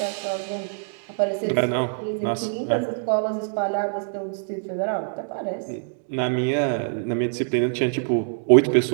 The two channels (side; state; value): left; silent; digital silence